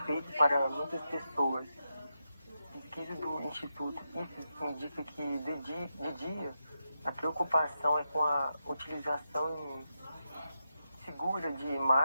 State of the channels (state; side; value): inverted; both; correlation -0.86